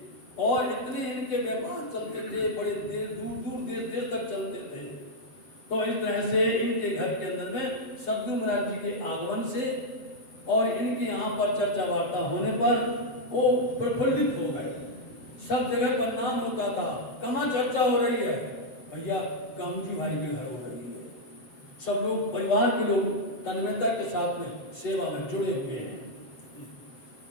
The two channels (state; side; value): late; right; 7.5 ms